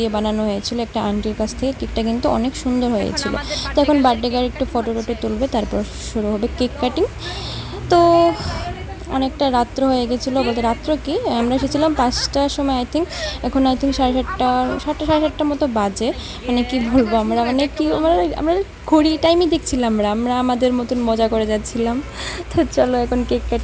বানানো হয়েছিল একটা আন্টির কাছ থেকে। কেকটা কিন্তু অনেক সুন্দর হয়েছিল। তো এখন বার্থডে গার্ল একটু ফটো টটো তুলবে, তারপর শুরু হবে কেক কাটিং। তো অনেকটা রাত্র হয়ে গেছিলো, বলতে রাত্র কি, আমরা এসেছিলাম 5টার সময় আই থিঙ্ক। এখন আই থিঙ্ক 7:30 সাড়ে 7টার মতো বাজে। মানে কি বলবো, আমরা ঘড়ি টাইমই দেখছিলাম, আমরা আমাদের মতন মজা করে যাচ্ছিলাম। তো চলো এখন কেক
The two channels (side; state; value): both; identical; correlation 1.00